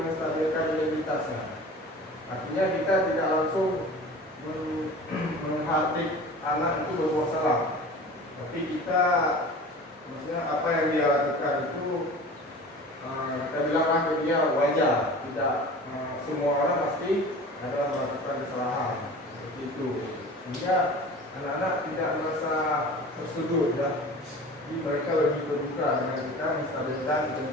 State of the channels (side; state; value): both; normal; correlation 0.39